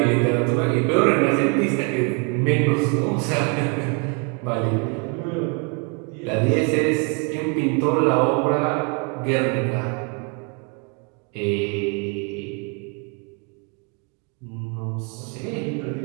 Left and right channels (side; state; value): left; quieter; 36.0 dB